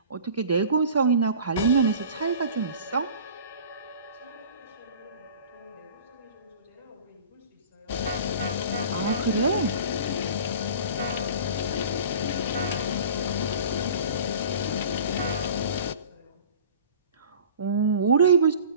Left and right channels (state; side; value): inverted; both; correlation -0.42